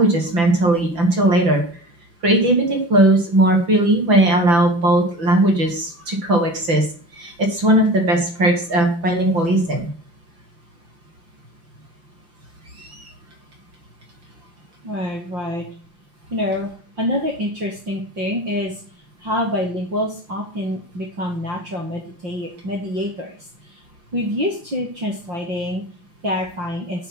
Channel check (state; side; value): late; left; 5.9 ms